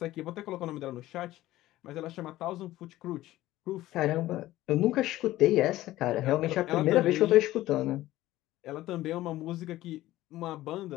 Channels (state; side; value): quieter; right; 15.8 dB